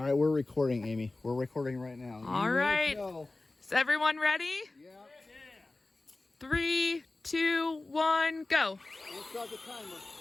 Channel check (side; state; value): right; quieter; 3.1 dB